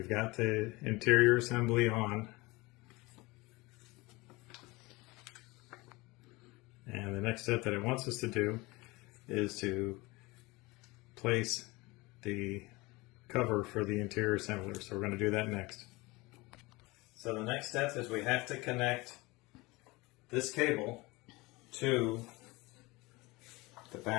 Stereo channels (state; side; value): quieter; right; 22.8 dB